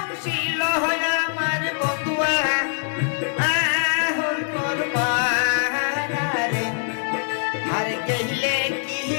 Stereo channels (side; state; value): right; silent; digital silence